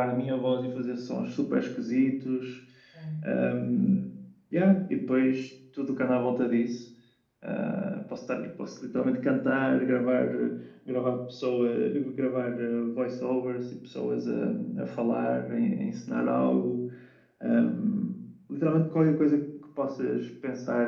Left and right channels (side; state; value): both; identical; correlation 1.00